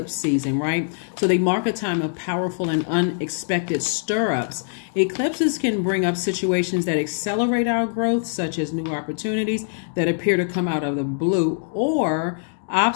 season, right? So they mark a time of powerful and unexpected stir-ups. Eclipses can bring up situations that accelerate our growth, such as new opportunities that appear to come out of the blue, or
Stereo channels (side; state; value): right; silent; digital silence